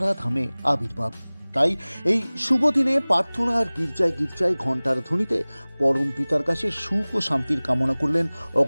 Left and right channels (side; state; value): both; inverted; correlation -1.00